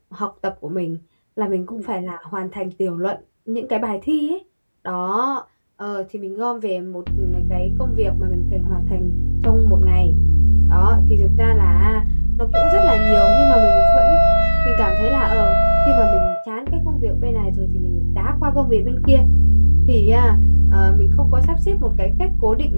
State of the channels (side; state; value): both; inverted; correlation -1.00